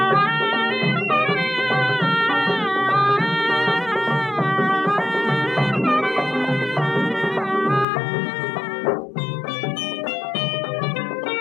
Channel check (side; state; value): right; drops out; at 7.9 s